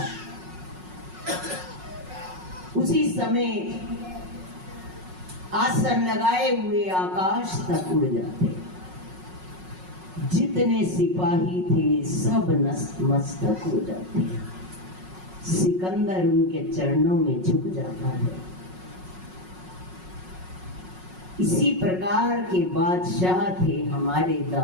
उसी समय आसन लगाए हुए आकाश तक उड़ जाते। जितने सिपाही थे सब नतमस्तक हो जाते। सिकंदर उनके चरणों में झुक जाता है। इसी प्रकार के बादशाह थे हमारे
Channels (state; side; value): late; left; 5.5 ms